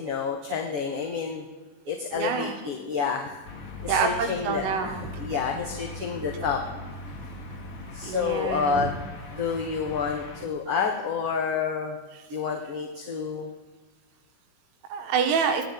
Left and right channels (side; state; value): left; late; 21 ms